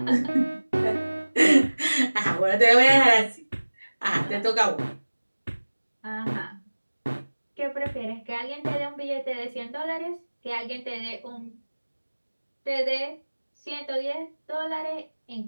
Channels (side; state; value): both; inverted; correlation -1.00